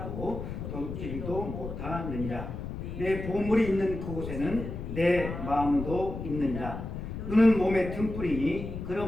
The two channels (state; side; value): noise; left; rumble, 7 dB below the sound